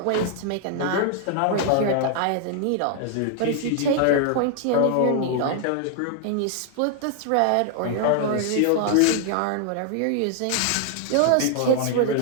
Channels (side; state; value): both; different; correlation 0.00